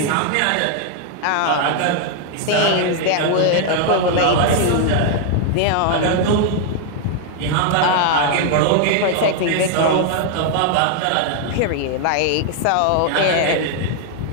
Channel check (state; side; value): different; both; correlation 0.00